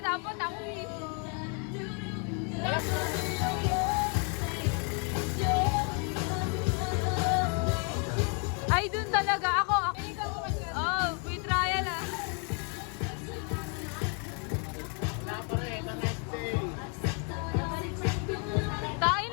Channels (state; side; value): quieter; right; 38.3 dB